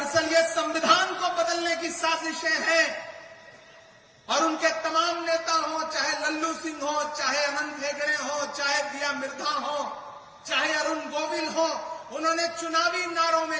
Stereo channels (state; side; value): identical; both; correlation 1.00